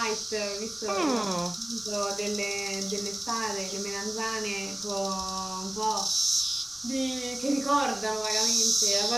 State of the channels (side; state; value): left; noise; rumble, 26 dB below the sound